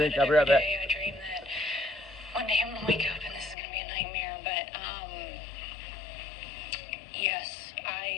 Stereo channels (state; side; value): drops out; right; at 3.6 s